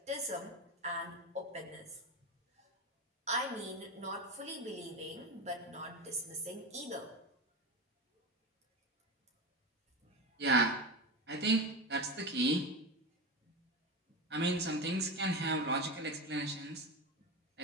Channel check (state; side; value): normal; both; correlation 0.20